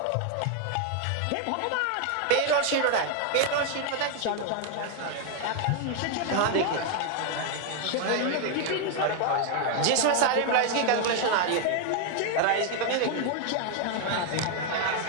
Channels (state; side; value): different; both; correlation 0.01